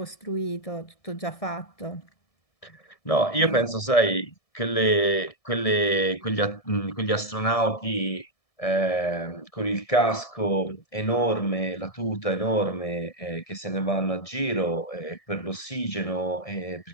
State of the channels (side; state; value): right; late; 1.7 ms